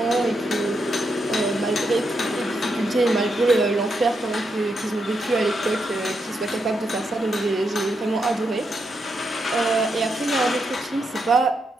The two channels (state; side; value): normal; both; correlation 0.82